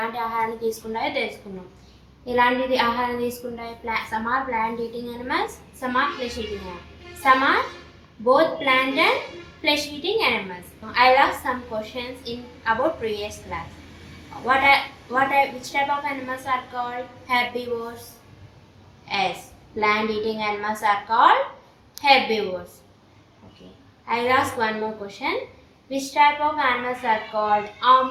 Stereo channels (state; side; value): identical; both; correlation 1.00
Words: ఆహారాన్ని తీసుకుంటాయో తెలుసుకున్నాం. ఎలాంటిది ఆహారం తీసుకుంటాయి? Some are plant eating animals, some are flesh eating animals, some are both plant and flesh eating animals. I asked some questions in about previous class. Which type of animals are called herbivores? Yes, plant eating animals are called herbivores. Okay, I ask one more question. Which type of animals are called